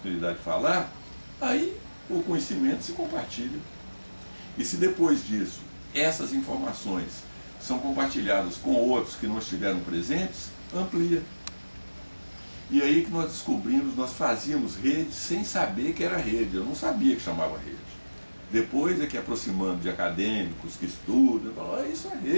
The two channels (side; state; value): both; inverted; correlation -1.00